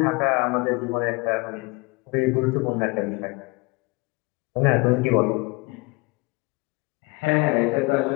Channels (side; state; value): right; quieter; 26.4 dB